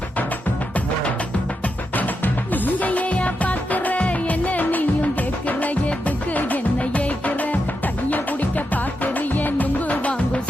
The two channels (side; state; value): both; normal; correlation 0.85